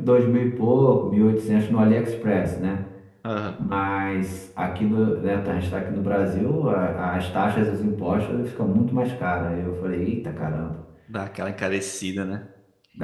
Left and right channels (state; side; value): identical; both; correlation 1.00